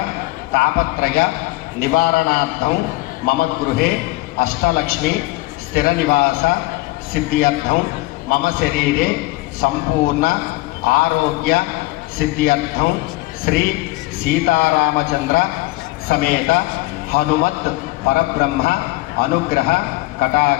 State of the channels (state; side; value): quieter; right; 20.6 dB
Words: तापत्रय निवारणार्थं मम गृहे अष्टलक्ष्मी स्थिरनिवास सिद्ध्यर्थं मम शरीरे संपूर्ण आरोग्य सिद्ध्यर्थं श्री सीतारामचंद्र समेत हनुमत् परब्रह्म अनुग्रह